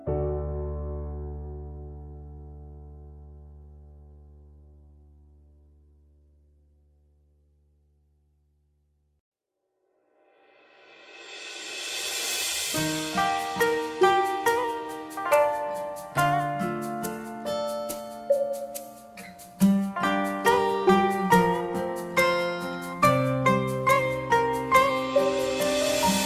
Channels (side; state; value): both; identical; correlation 1.00